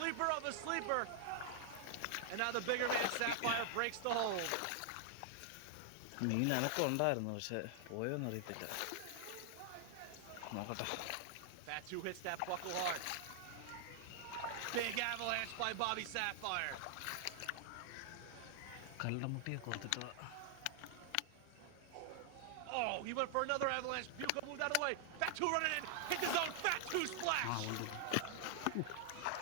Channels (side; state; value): both; different; correlation 0.00